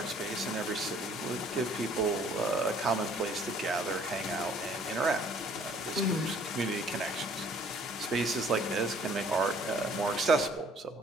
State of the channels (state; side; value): normal; both; correlation 0.58